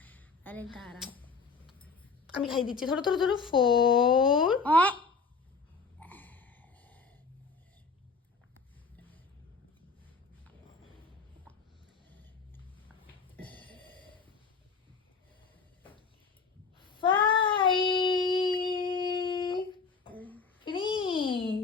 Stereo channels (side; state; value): right; quieter; 4.9 dB